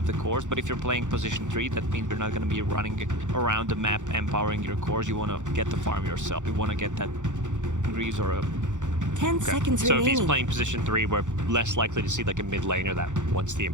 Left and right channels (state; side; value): late; left; 0.85 ms